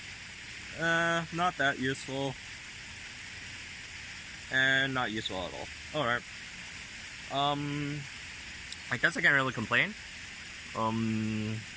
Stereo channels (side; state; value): both; identical; correlation 1.00